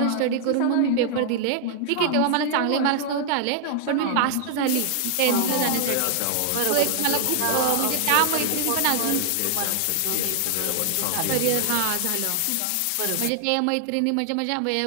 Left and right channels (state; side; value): different; both; correlation 0.00